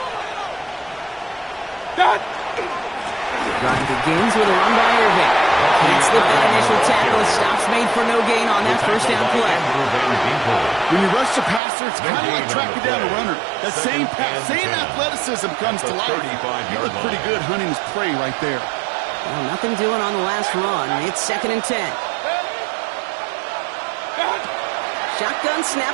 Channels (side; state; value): left; drops out; at 11.6 s